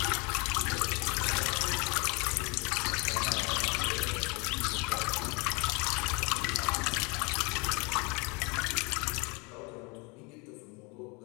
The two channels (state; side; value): quieter; right; 29.8 dB